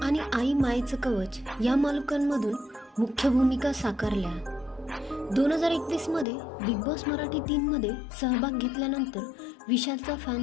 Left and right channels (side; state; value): right; drops out; at 6.2 s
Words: आणि आई मायेचं कवच या मालिकांमधून मुख्य भूमिका साकारल्या। 2021 मध्ये बिग बॉस मराठी 3 मध्ये सहभाग घेतल्यानंतर विशालचा